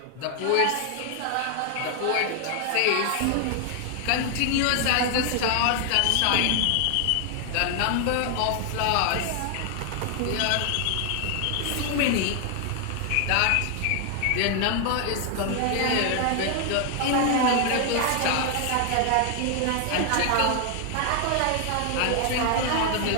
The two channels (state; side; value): different; both; correlation 0.00